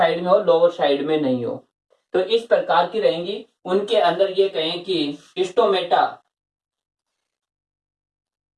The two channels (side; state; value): both; identical; correlation 1.00